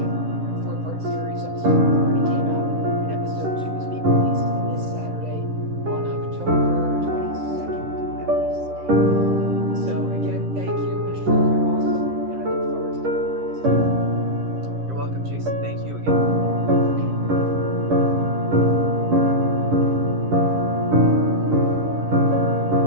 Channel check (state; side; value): late; left; 10 ms